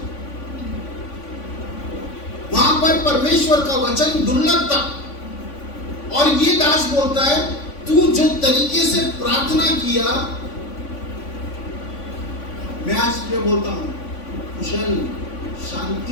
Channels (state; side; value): late; right; 3.5 ms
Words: वहां पर परमेश्वर का वचन दुर्लभ था, और ये दास बोलता है, तू जो तरीके से प्रार्थना किया, मैं आज तुझे बोलता हूं, कुशल